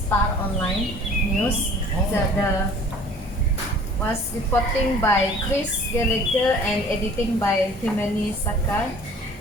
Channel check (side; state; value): both; normal; correlation 0.49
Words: Online news. The was reporting by Chris Gallagher and editing by Timothy Sakar.